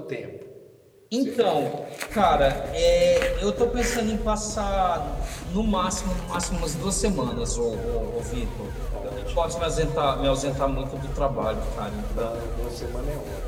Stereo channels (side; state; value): both; identical; correlation 1.00